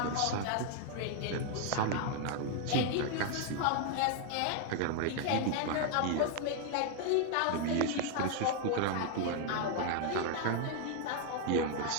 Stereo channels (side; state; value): both; different; correlation 0.00